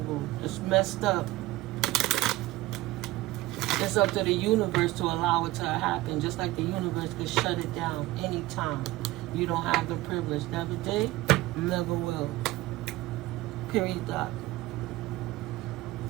It's messed up. It's up to the universe to allow it to happen, just like the universe could shut it down anytime. You don't have the privilege. Never did, never will. Period. Dot.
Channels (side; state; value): left; quieter; 18.1 dB